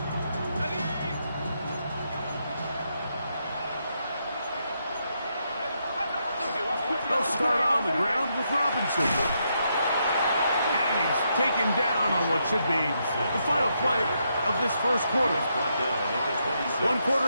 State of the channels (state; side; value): inverted; both; correlation -0.79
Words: Start on the ground with Robinson. And he's taken down on what should be the final play of this first quarter. 1